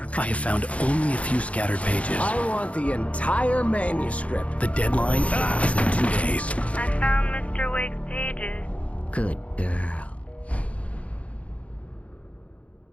I have found only a few scattered pages. I want the entire manuscript. The deadline is in 2 days. I found Mr. Wake's pages. Good girl.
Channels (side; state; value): right; late; 0.064 ms